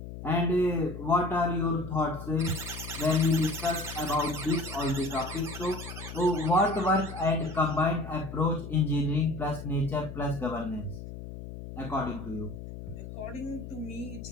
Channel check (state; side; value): noise; left; hum, 10 dB below the sound